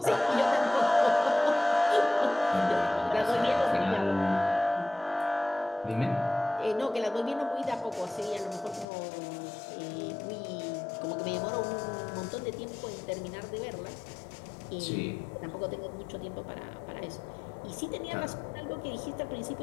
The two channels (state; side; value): drops out; right; at 8.8 s